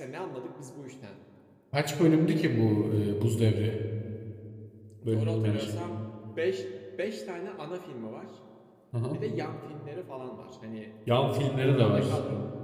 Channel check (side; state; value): both; identical; correlation 1.00